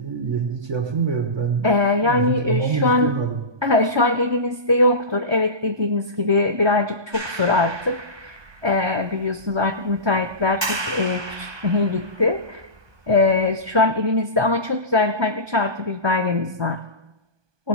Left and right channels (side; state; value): left; late; 1.2 ms